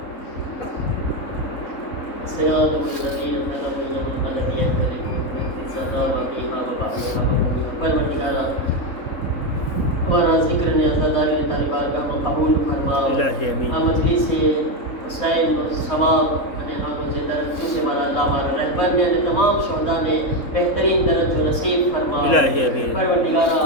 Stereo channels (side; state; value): right; late; 3.7 ms